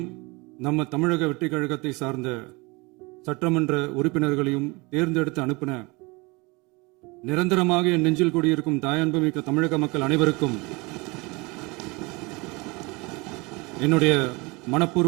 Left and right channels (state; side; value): quieter; left; 26.1 dB